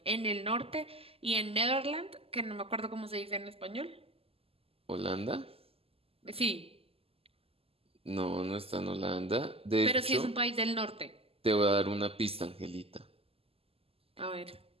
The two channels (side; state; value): left; late; 0.28 ms